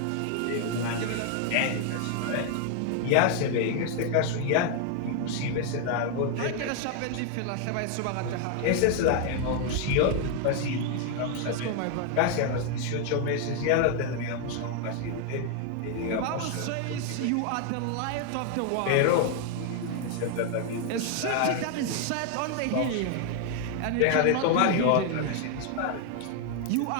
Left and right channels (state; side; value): different; both; correlation 0.00